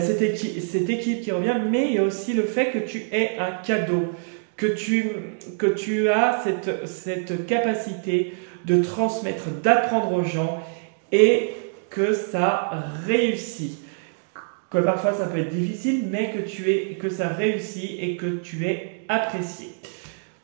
cette équipe qui revient, mais il y a aussi le fait que tu es un cadeau, que tu as cette capacité de transmettre, d'apprendre aux gens et que ça réussit. Que parfois ça peut être difficile, mais que ça réussit et que tu es apprécié.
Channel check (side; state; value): left; silent; digital silence